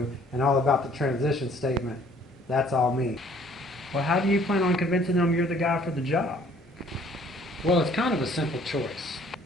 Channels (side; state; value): both; normal; correlation 0.58